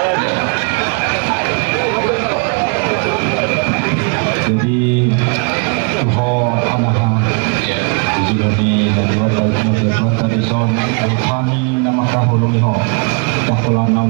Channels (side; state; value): left; quieter; 36.9 dB